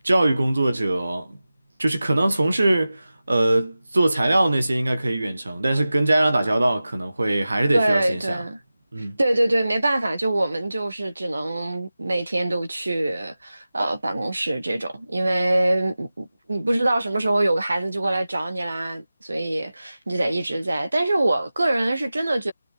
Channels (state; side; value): inverted; both; correlation -0.95